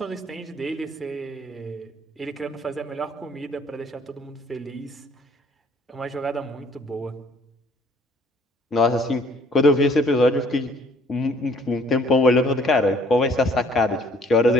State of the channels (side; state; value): both; normal; correlation 0.59